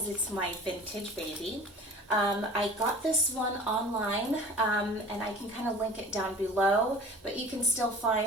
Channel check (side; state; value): both; normal; correlation 0.42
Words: it's my vintage baby. I got this one online, and I can kind of link it down below, but you can still